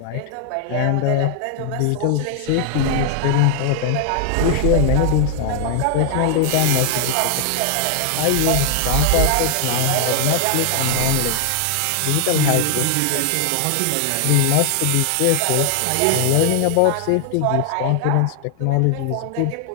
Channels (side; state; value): both; different; correlation 0.00